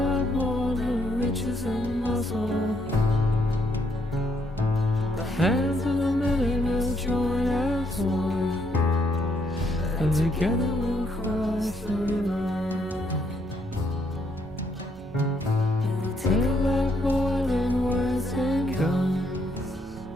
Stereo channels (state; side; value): normal; both; correlation 0.72